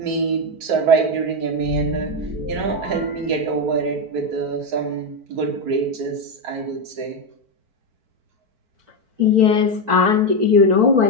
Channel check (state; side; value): late; left; 4.5 ms